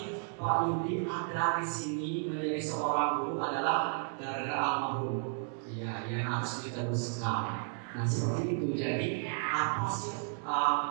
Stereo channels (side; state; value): left; silent; 55 dB below the other